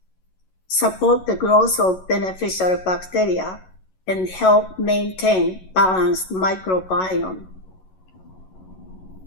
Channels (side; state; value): right; late; 11 ms